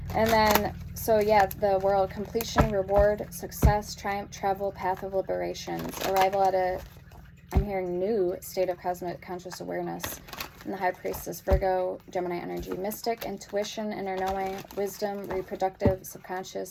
And then, so yeah, the World, completion, reward, success, triumph, travel, path of liberations. Arrival at a, I'm hearing, new state of cosmic conscious awareness. And the High Priestess, Virgo, Gemini energy. Mystic, intuition, inner knowing, wisdom, reproductive,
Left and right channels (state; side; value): identical; both; correlation 1.00